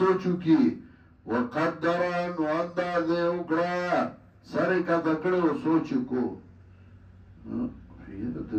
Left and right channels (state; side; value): identical; both; correlation 1.00